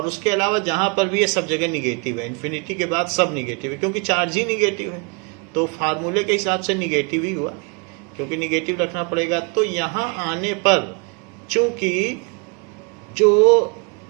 उसके अलावा जहां पर भी है सब जगह निगेटिव है। इन्फिनिटी के बाद सब निगेटिव है क्योंकि चार्ज ही निगेटिव है, तो फार्मूले के हिसाब से निगेटिव ही हुआ, क्योंकि निगेटिव रखना पड़ेगा। तो यहाँ आने पर चूंकि जो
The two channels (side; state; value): left; quieter; 32.6 dB